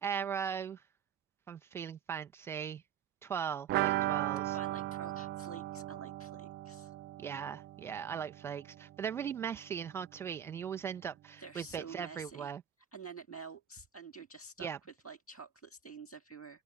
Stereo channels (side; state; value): left; quieter; 9.5 dB